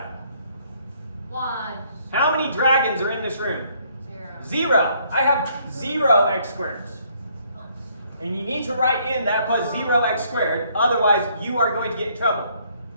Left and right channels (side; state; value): both; inverted; correlation -0.66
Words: 1. How many dragons are in this room? 0. 0. I have 0 x squareds. And you need to write in that plus 0x squared, otherwise you are going to get in trouble.